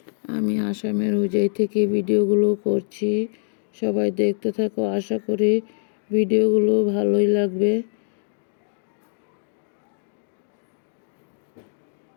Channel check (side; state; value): right; silent; digital silence